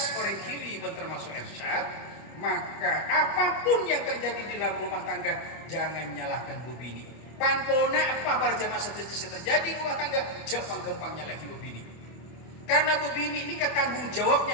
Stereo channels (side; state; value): right; late; 25 ms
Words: orang kili termasuk Ersyad, maka apapun yang terjadi di dalam rumah tangga jangan nyalahkan bu bini. Panpona apa para jamaah setuju terjadi di rumah tangga jangan gampang nyalahi bu bini. Karena bu bini ini tanggung